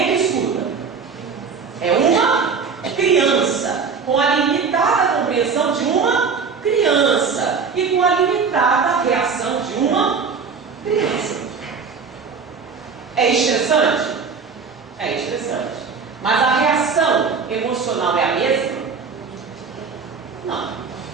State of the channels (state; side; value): quieter; left; 5.5 dB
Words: que escuta? É uma criança, com a limitada compreensão de uma criança e com a limitada reação de uma criança. É estressante? É estressante. Mas a reação emocional é a mesma? Não.